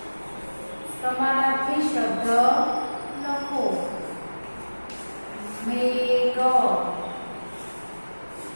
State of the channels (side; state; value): both; inverted; correlation -1.00